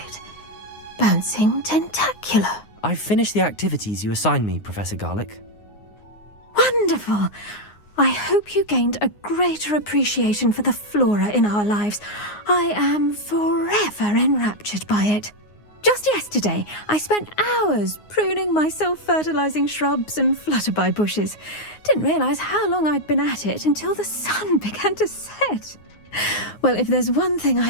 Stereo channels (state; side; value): late; right; 9.6 ms